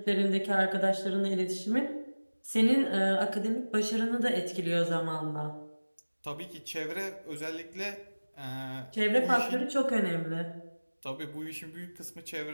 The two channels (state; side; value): inverted; both; correlation -1.00